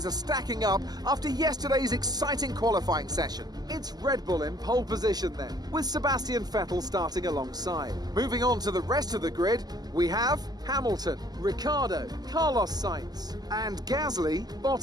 are stacking up after yesterday's exciting qualifying session. It's Red Bull in pole position then, with Sebastian Vettel starting alongside. Moving on to the rest of the grid, we have Hamilton, Ricciardo, Carlos Sainz, and Gasly,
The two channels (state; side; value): late; left; 0.19 ms